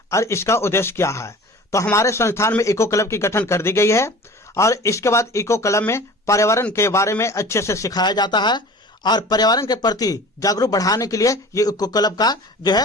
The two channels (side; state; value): both; normal; correlation 0.41